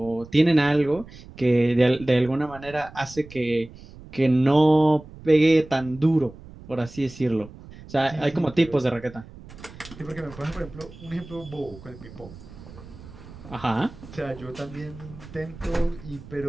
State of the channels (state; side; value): noise; right; rumble, 18 dB below the sound